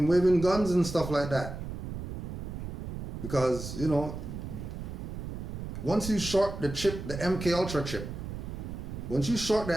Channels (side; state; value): right; noise; rumble, 7 dB below the sound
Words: waving guns and stuff like that. Because, you know, once you short the chip, the MK Ultra chip, once you short the